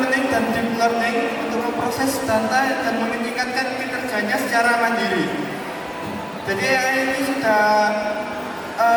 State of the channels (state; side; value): identical; both; correlation 1.00